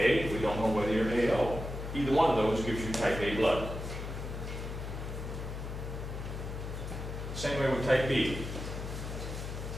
we don't know whether you're AO. Either one of those gives you type A blood. Same way with type B.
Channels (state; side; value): noise; left; hum, 6 dB below the sound